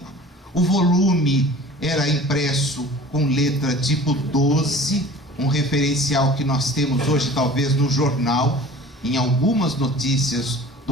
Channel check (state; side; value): normal; both; correlation 0.44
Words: O volume era impresso com letra tipo 12, um referencial que nós temos hoje talvez no jornal, em algumas notícias